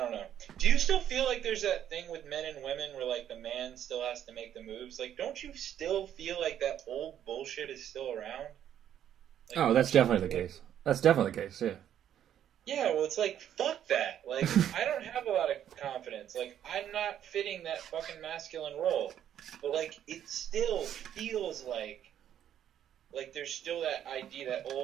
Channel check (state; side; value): quieter; left; 10.3 dB